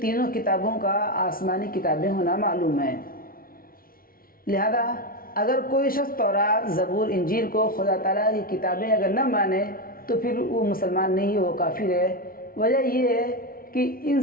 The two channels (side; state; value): right; late; 0.43 ms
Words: تینوں کتابوں کا آسمانی کتابیں ہونا معلوم ہے. لہذا اگر کوئی شخص تورات، زبور، انجیل کو خدا تعالیٰ کی کتابیں اگر نہ مانے تو پھر وہ مسلمان نہیں ہے، وہ کافر ہے. وجہ یہ ہے کہ ان